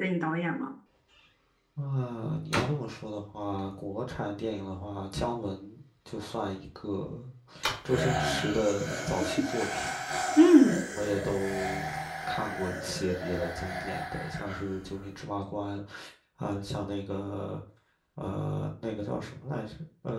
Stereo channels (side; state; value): both; identical; correlation 1.00